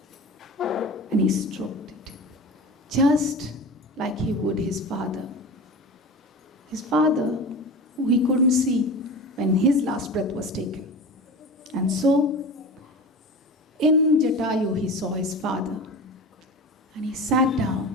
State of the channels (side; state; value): both; normal; correlation 0.31